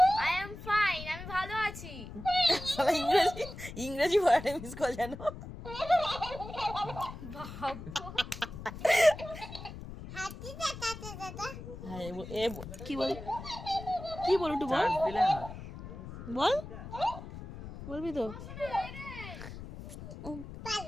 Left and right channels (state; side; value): noise; left; rumble, 11 dB below the sound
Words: I am fine, আমি ভালো আছি। ইংরেজি ওয়ার্ডে মিস কল জানো। কি বল একটু বল, বল, বলবি তো?